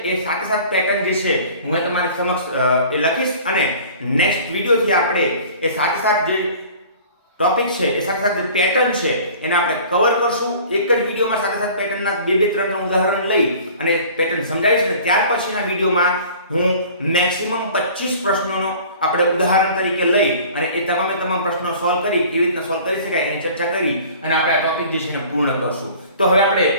એ સાથે સાથે પેટર્ન જે છે હું તમારી સમક્ષ એ લખીશ અને નેક્સ્ટ વિડિયોથી આપણે એ સાથે સાથે જે ટોપિક છે એ સાથે સાથે પેટર્ન છે એને આપણે કવર કરશું. એક જ વિડિયોમાં સાથે સાથે પેટર્નના 2-3 ઉદાહરણ લઈ અને પેટર્ન સમજાવીશ ને ત્યાર પછીના વિડિયોમાં હું મેક્સિમમ 25 પ્રશ્નોનો આપણે ઉદાહરણ તરીકે લઈ અને એ તમામ પ્રશ્નો સોલ્વ કરી કેવી રીતના સોલ્વ કરી શકાય એની ચર્ચા કરી અને આપણે આ ટોપિક જે છે એને પૂર્ણ કરશું. તો હવે આપણે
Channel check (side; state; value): both; inverted; correlation -0.46